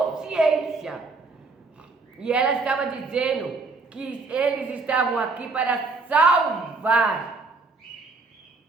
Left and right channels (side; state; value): left; quieter; 3.9 dB